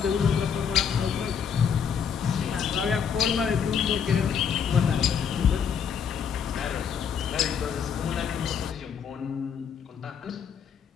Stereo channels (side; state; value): right; quieter; 7.2 dB